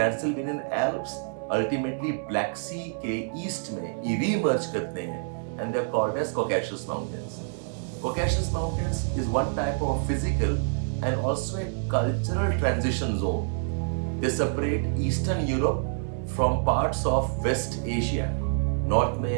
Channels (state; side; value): silent; left; digital silence